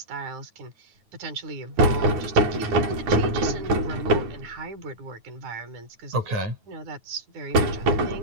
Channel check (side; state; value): left; late; 9.3 ms